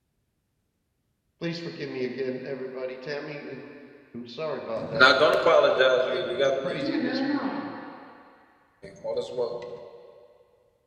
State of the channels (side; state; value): both; identical; correlation 1.00